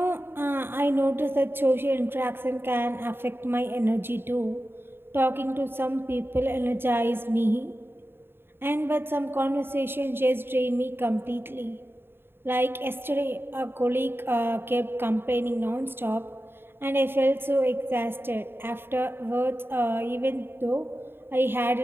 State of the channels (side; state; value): left; late; 0.11 ms